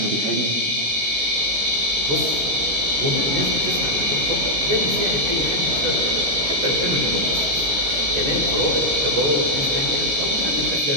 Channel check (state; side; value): late; left; 16 ms